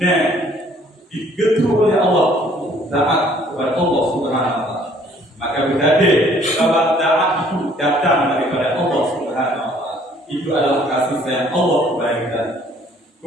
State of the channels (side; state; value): both; normal; correlation 0.59